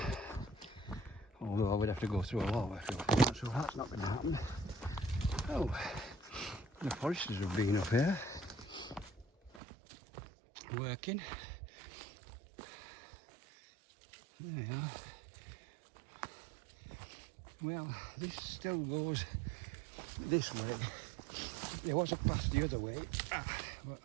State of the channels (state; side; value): drops out; left; at 9.6 s